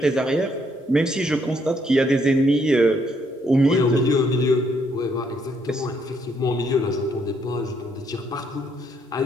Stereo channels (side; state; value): both; normal; correlation 0.71